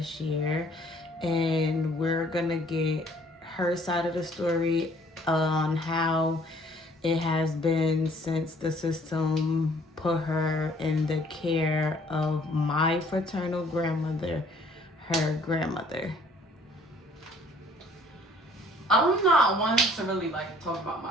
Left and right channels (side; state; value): both; normal; correlation 0.58